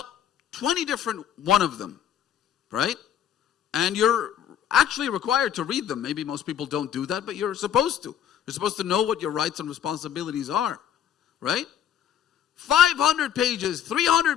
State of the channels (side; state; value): right; quieter; 9.8 dB